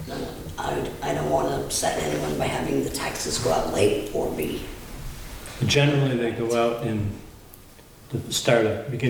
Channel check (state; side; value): identical; both; correlation 1.00